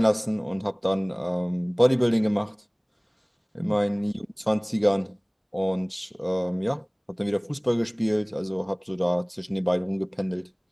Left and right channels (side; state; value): both; identical; correlation 1.00